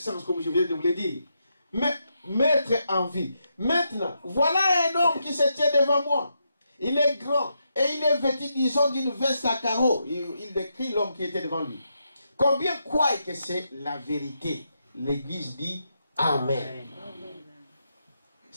comme je viens de vous le dire. Mais mettre en vie. Maintenant, voilà un homme qui se tient devant moi. Il est grand et il est vêtu, disons, d'une veste à carreaux. Il décrit l'homme qui était devant lui. Combien croient que c'est la vérité? L'Église dit Amen.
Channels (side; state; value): both; inverted; correlation -0.82